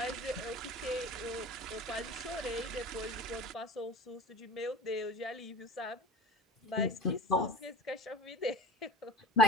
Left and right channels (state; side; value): normal; both; correlation 0.36